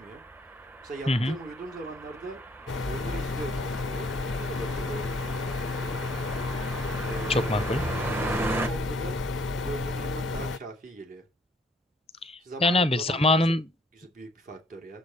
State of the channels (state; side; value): normal; both; correlation 0.63